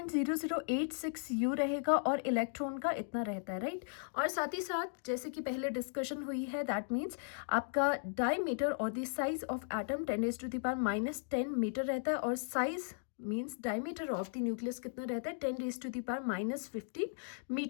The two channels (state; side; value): silent; right; digital silence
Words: U रहेगा और इलेक्ट्रॉन का इतना रहता है, राइट। और साथ ही साथ जैसे कि पहले डिस्कशन हुई है, दैट मीन्स आपका डायमीटर और the size of atom 10⁻10 metre रहता है, और size means diameter of the nucleus कितना रहता है, 10⁻15